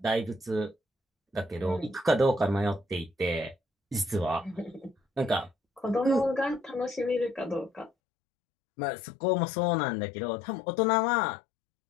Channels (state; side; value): drops out; right; at 7.9 s